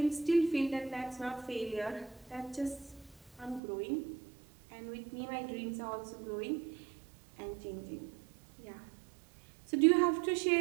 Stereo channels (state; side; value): drops out; left; at 3.6 s